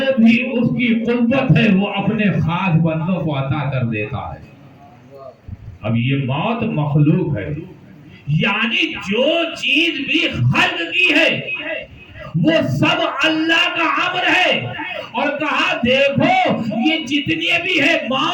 بھی اس کی قوت ہے وہ اپنے خاص بندوں کو عطا کر دیتا ہے۔ اب یہ موت مخلوق ہے، یعنی جو چیز بھی خلق کی ہے وہ سب اللہ کا امر ہے، اور کہا دیکھو یہ جتنی بھی ہے،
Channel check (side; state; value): both; identical; correlation 1.00